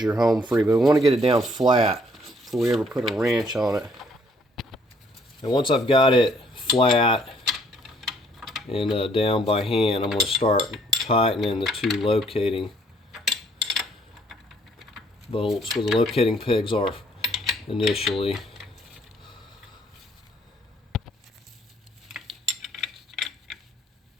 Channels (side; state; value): both; normal; correlation 0.64